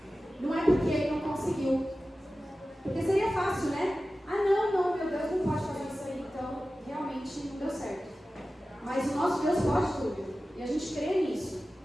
não é porque Ele não conseguiu. Porque seria fácil, né? Ah, não, meu Deus não pode fazer isso aí, então realmente não deu certo. Mas o nosso Deus pode tudo. E a gente crê nisso.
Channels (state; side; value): normal; both; correlation 0.95